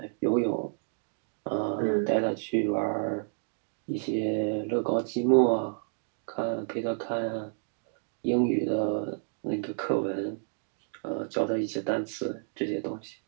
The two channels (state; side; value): silent; left; digital silence